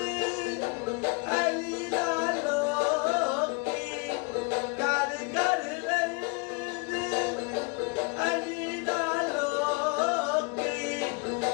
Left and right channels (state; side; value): quieter; right; 30.5 dB